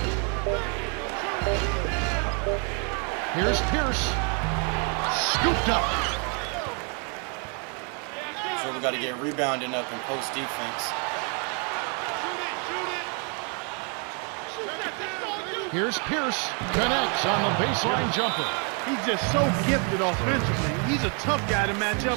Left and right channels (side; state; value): left; quieter; 37.3 dB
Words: Here's Pierce. Scooped up. So we got to get rebounding up and post defense. Here's Pierce. Connects on the baseline jumper. He's just so gifted offensively. He's a tough guy to match